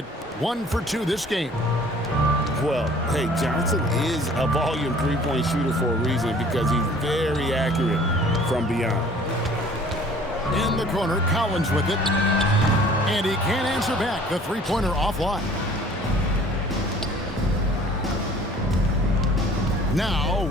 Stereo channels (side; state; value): both; normal; correlation 0.52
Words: 1 for 2 this game. Well, hey, Johnson is a volume three-point shooter for a reason because he's very accurate from beyond. In the corner, Collins with it. And he can't answer back. The three-pointer offline. Now,